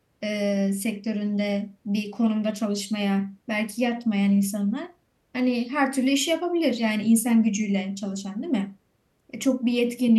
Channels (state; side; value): identical; both; correlation 1.00